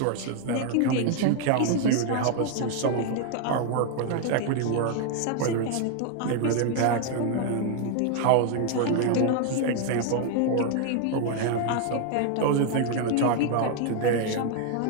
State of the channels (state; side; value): different; both; correlation 0.00